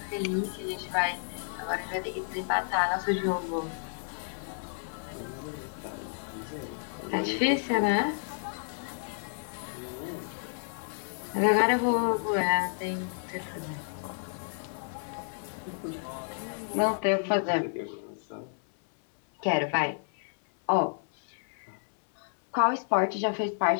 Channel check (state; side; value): silent; right; 57 dB below the other